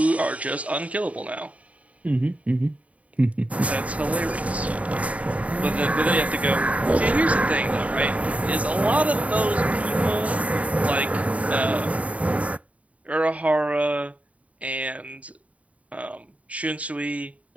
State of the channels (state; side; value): late; left; 0.067 ms